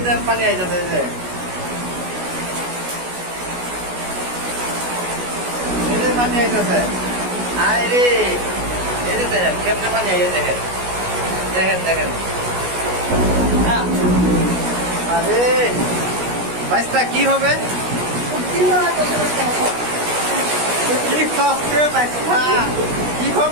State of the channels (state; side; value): late; left; 16 ms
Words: পানি আইতেছে এই যে পানি আইতেছে আরে এই যে দেখেন কেমনে পানি আইয়ে দেখেন দেখেন দেখেন আরে বাচ্চা কি হবে কি হবে বাচ্চা কি